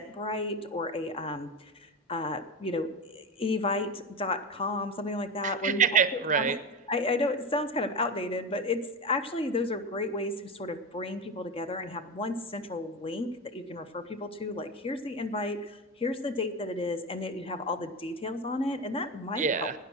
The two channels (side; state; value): both; normal; correlation 0.20